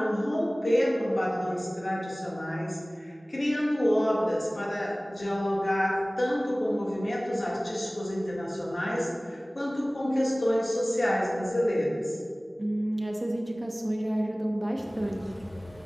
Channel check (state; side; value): normal; both; correlation 0.98